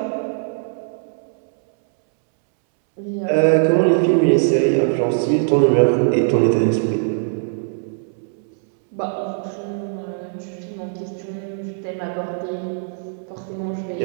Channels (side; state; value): left; silent; 65 dB below the other